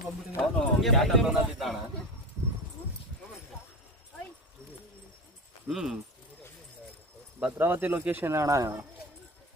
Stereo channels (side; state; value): both; normal; correlation 0.25